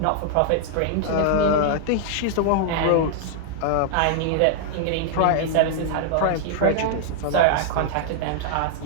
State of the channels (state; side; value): different; both; correlation -0.01